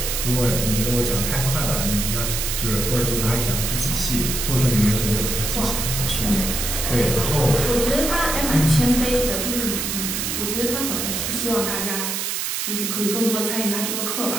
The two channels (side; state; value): right; noise; hiss, 2 dB below the sound